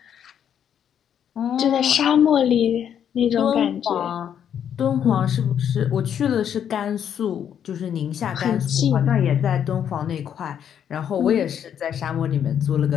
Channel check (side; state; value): right; quieter; 8.9 dB